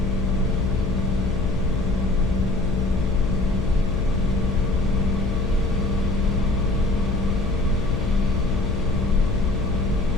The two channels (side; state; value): left; noise; hum, 3 dB below the sound